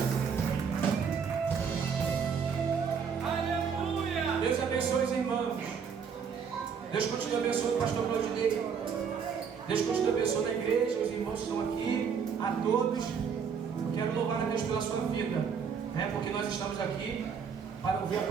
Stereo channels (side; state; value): left; quieter; 6.6 dB